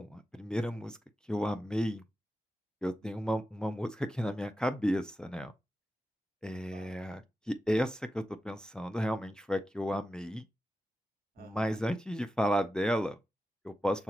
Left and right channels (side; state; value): both; normal; correlation 0.92